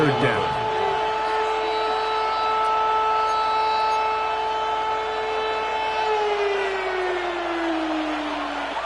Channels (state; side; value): noise; right; hum, 22 dB below the sound